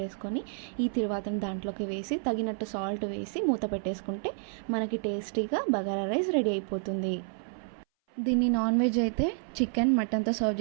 వేసుకొని ఈ తిరువాతను దాంట్లోకి వేసి తగినట్టు సాల్ట్ వేసి మూత పెట్టేసుకుంటే మనకి టేస్టీగా బగారా రైస్ రెడీ అయిపోతుంది. దీన్ని నాన్ వెజ్ అయితే చికెన్ మటన్తో సర్వ్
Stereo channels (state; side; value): silent; left; 58 dB below the other